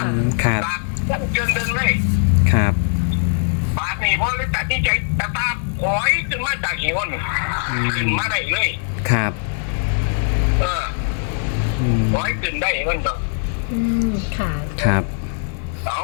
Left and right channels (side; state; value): right; silent; digital silence